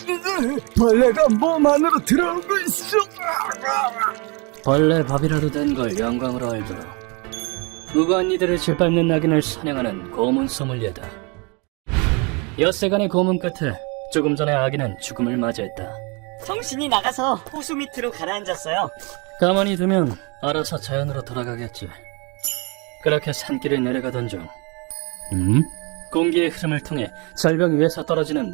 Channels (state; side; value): quieter; left; 30.8 dB